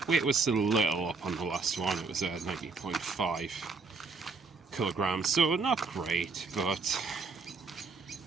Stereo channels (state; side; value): quieter; left; 4.4 dB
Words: weight was still a little up on the last one. It was 90.5 kilograms, so not great, but